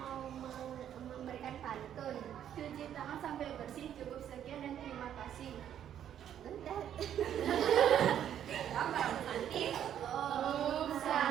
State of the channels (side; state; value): left; quieter; 10.0 dB